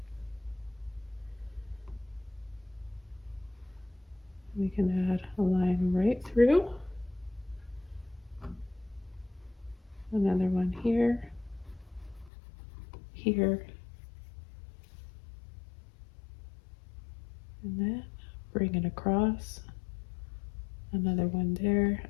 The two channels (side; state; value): right; drops out; at 12.3 s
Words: We can add a line right through. Another one here, here, and then bring it across. Another one there.